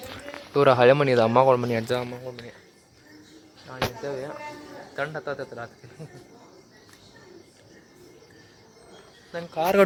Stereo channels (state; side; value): identical; both; correlation 1.00